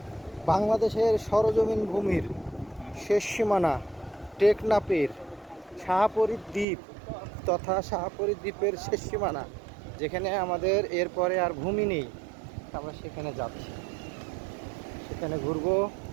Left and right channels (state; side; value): drops out; left; at 6.7 s